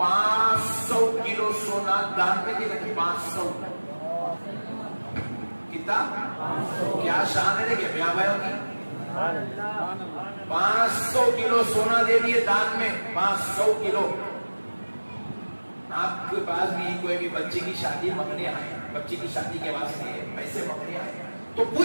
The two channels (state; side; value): inverted; both; correlation -1.00